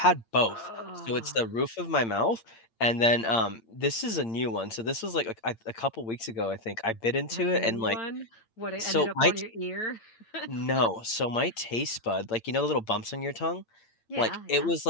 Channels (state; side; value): late; right; 8.8 ms